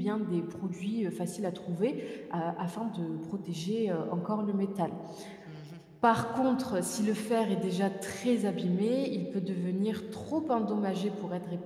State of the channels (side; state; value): both; identical; correlation 1.00